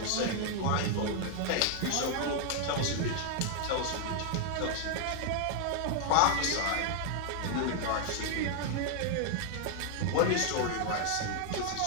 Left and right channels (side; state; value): both; different; correlation 0.00